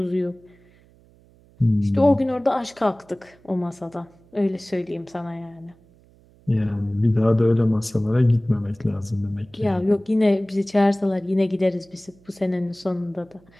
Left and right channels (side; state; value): right; noise; hum, 29 dB below the sound